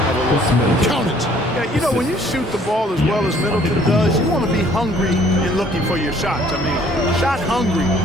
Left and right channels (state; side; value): normal; both; correlation 0.59